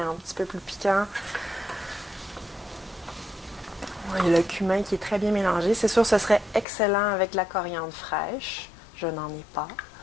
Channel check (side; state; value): right; drops out; at 6.7 s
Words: petit peu plus piquant. Il y a le cumin qui est très bien mélangé. C'est sûr, ce serait excellent avec de la coriandre fraîche. Je n'en ai pas.